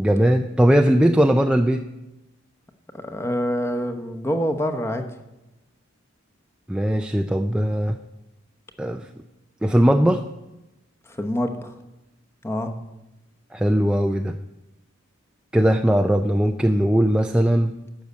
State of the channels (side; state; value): both; normal; correlation 0.94